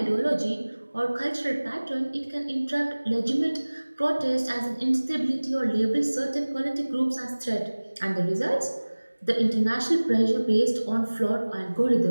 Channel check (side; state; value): both; inverted; correlation -1.00